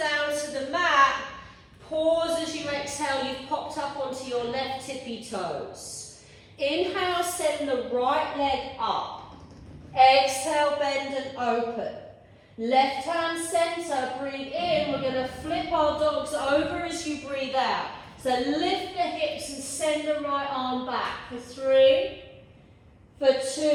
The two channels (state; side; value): identical; both; correlation 1.00